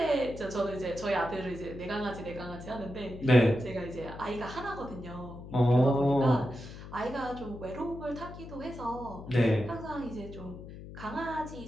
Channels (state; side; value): noise; left; hum, 13 dB below the sound